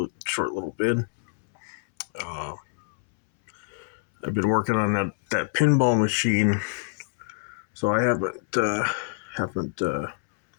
a short little bid. Uh, I've been working on that pinball machine, so I haven't been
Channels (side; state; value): right; silent; 61 dB below the other